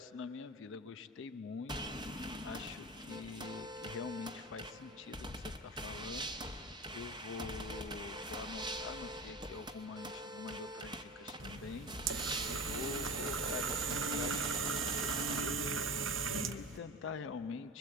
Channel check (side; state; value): both; normal; correlation 0.31